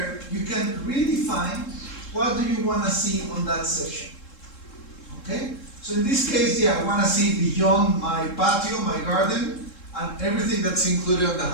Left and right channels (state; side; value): late; right; 3.7 ms